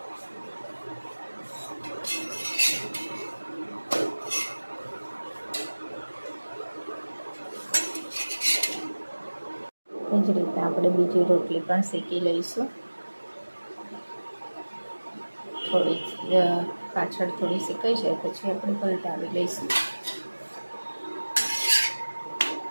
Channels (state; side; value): inverted; both; correlation -1.00